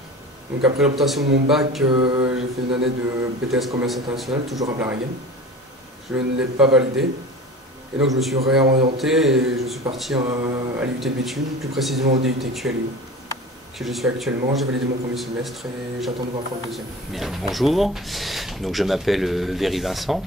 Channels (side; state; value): both; normal; correlation 0.36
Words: Donc après l'obtention de mon bac, j'ai fait une année de BTS Commerce International, toujours à Blarigan. Je ne l'ai pas validé. Et donc je me suis réorienté et je suis parti à l'IUT de Béthune, plus précisément au DUT QLU, que je suis actuellement. J'ai validé mon premier semestre et j'attends de voir pour le deuxième. Bien, bonjour, donc je m'appelle Véry Vincent,